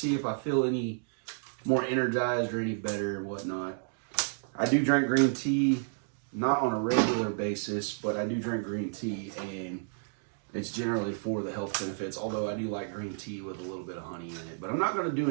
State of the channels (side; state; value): left; silent; digital silence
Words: if I feel any more energized or any better and whatnot. I do drink green tea, not on a regular basis, but I do drink green tea, and it's generally for the health benefits, although I do like green tea with a little bit of honey in it. But I'm not going to do